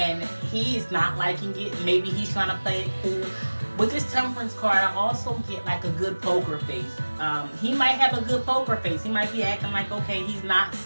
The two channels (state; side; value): inverted; both; correlation -1.00